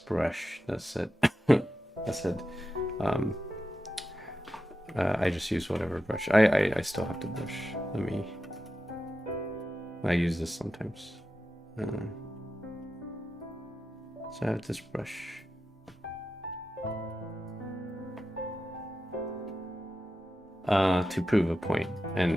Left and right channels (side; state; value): both; normal; correlation 0.90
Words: that said that said I just use whatever brush. I still have the brush. I use this sometimes. So I have this brush. To prove a point,